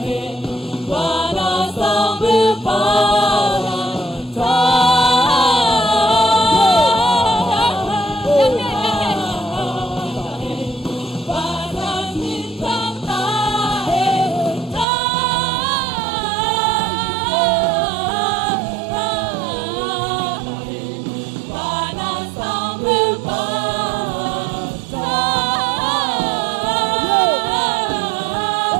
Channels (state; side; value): drops out; left; at 14.9 s